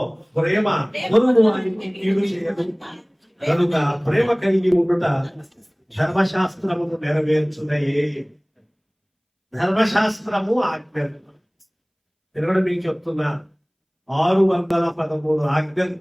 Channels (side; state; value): both; identical; correlation 1.00